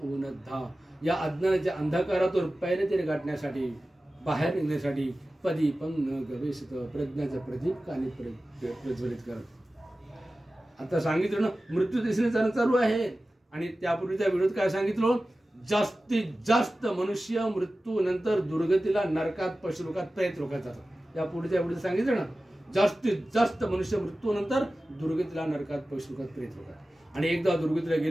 या अज्ञानाच्या अंधकारातून पहिले तरी गाठण्यासाठी, बाहेर निघण्यासाठी पदीपं न गवेषत, प्रज्ञाचं प्रदीप काने प्रज्वलित करत. आता सांगितलं ना मृत्यू दिसणे चालू आहे. आणि त्यापूर्वीच्या व्हिडिओत काय सांगितलं? जास्तीत जास्त मनुष्य मृत्यू नंतर दुर्गतीला, नरकात, पशुलोकात, प्रेत लोकात जातात. या पुढच्या व्हिडिओत सांगितलं ना जास्तीत जास्त मनुष्य मृत्यू नंतर दुर्गतीला, नरकात, पशुलोकात, प्रेत लोकात. आणि एकदा दुर्गतीला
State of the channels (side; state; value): both; normal; correlation 0.95